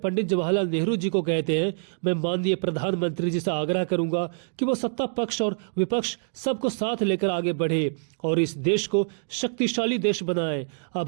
पंडित जवाहरलाल नेहरू जी को कहते हैं, मैं माननीय प्रधानमंत्री जी से आग्रह करूंगा कि वो सत्ता पक्ष और विपक्ष सबको साथ लेकर आगे बढ़े और इस देश को शक्तिशाली देश बनाए।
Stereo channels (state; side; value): silent; left; digital silence